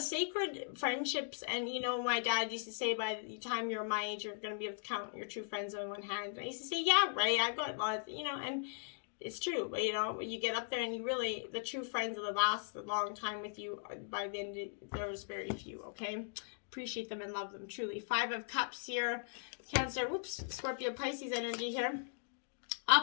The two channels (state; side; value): silent; right; digital silence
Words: friendships. And, my dad used to say, by the time you're my age, you're going to be able to count your true friends on one hand. And I used to say, yeah, right, I've got lots, and it's true. But, when you get up there and the true friends that last a long time with you, by the end, there's very few, okay? Appreciate them and love them, truly. Five of Cups here. Cancer, Scorpio, Pisces energy here.